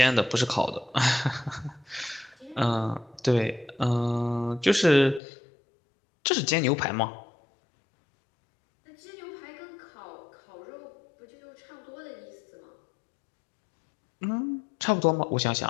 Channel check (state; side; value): drops out; right; at 5.2 s